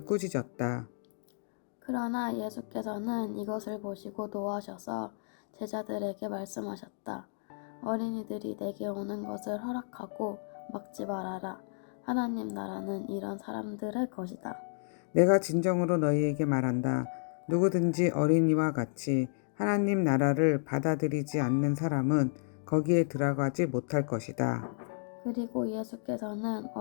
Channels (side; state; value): right; silent; digital silence